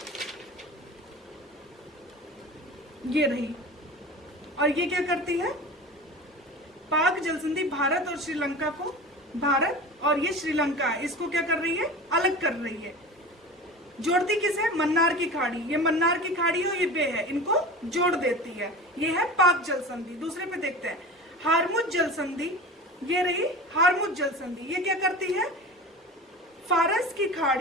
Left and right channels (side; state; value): both; normal; correlation 0.34